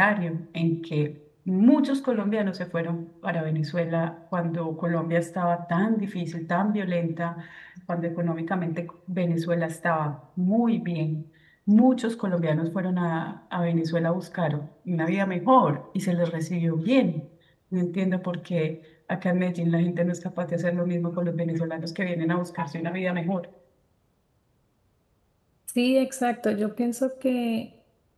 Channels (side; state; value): both; identical; correlation 1.00